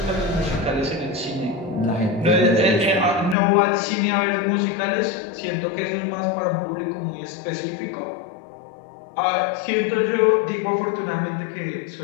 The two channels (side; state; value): right; drops out; at 3.4 s